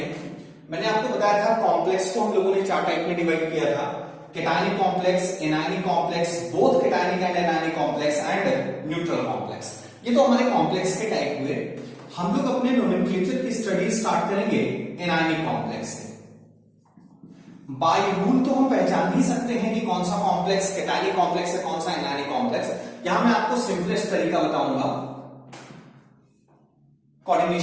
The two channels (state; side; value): identical; both; correlation 1.00